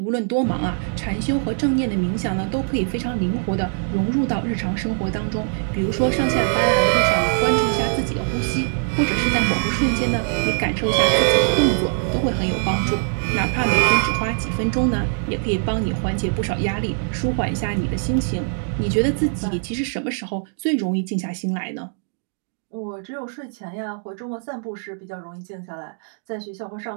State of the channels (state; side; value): silent; left; 64 dB below the other